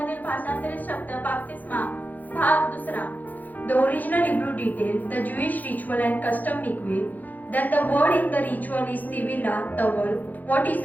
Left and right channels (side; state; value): right; late; 0.082 ms